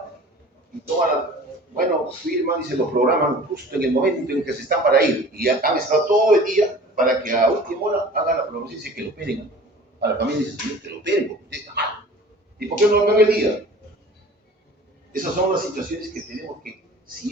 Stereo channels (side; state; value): both; normal; correlation 0.44